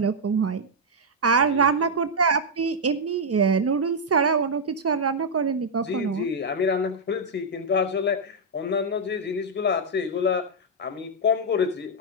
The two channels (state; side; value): normal; both; correlation -0.04